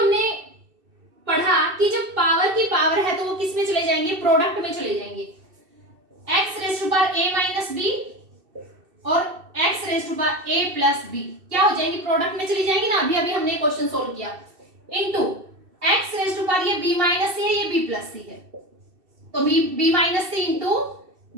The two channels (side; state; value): left; late; 2.7 ms